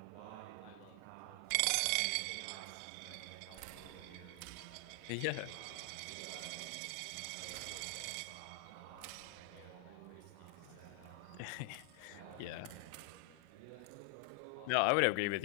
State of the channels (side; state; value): both; different; correlation 0.00